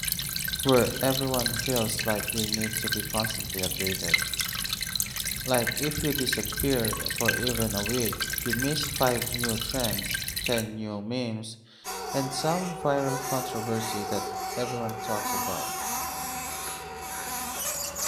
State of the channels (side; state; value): both; identical; correlation 1.00